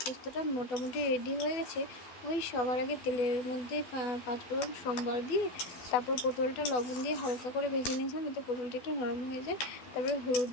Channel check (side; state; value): right; late; 12 ms